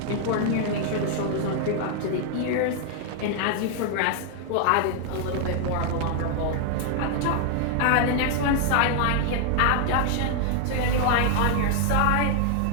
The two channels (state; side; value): different; both; correlation 0.00